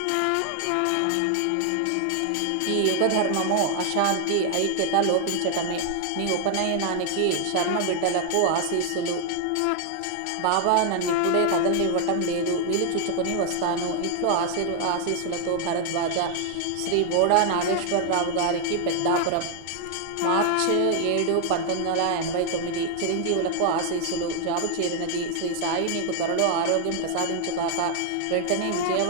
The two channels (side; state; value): both; different; correlation 0.00